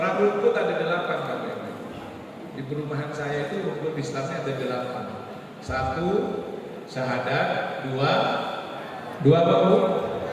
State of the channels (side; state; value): both; identical; correlation 1.00